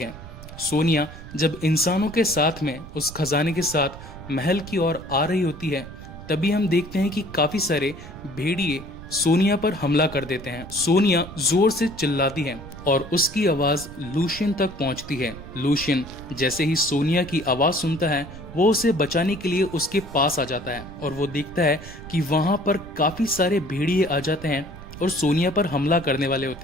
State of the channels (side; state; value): right; noise; rumble, 15 dB below the sound